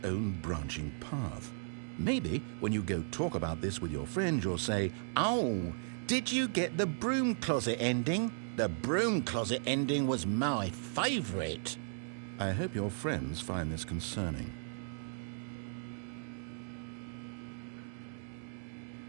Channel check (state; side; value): silent; left; digital silence